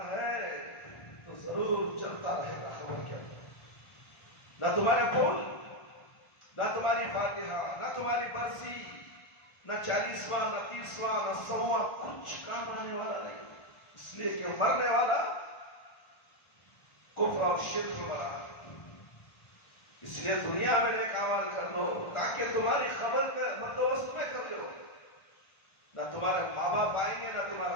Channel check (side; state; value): right; late; 1.5 ms